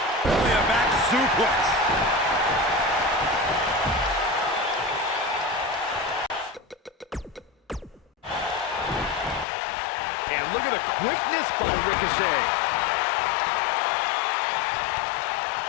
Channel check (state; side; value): drops out; right; at 9.5 s